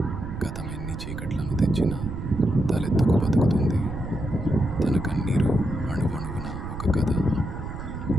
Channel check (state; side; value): noise; right; rumble, 7 dB below the sound